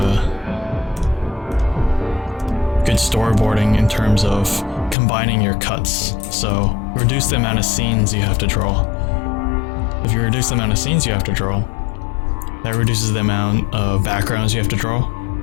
storyboarding in terms of combining your cuts. So reduce the amount of scenes you have to draw. If you reduce the amount of scenes you have to draw, that reduces the amount of backgrounds you have to draw.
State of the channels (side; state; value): right; drops out; at 5.0 s